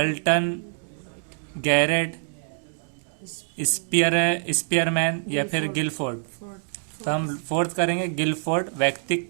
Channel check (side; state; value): left; silent; digital silence